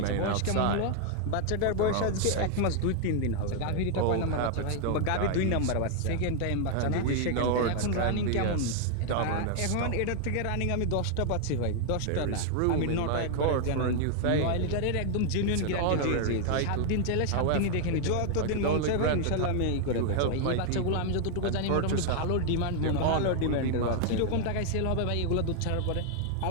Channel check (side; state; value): both; different; correlation 0.00